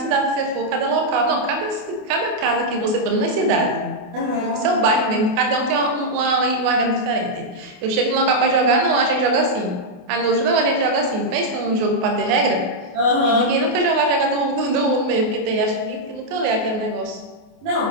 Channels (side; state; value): left; late; 28 ms